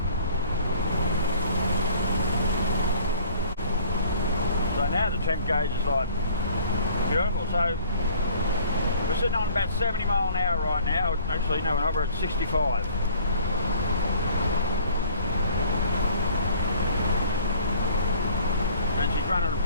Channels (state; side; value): inverted; both; correlation -0.53